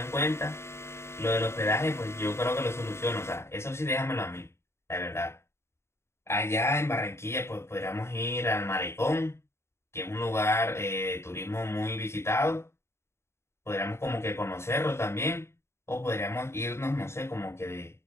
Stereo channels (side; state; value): right; late; 0.13 ms